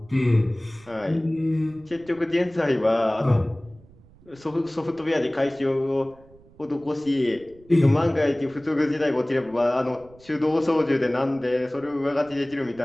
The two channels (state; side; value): noise; right; rumble, 26 dB below the sound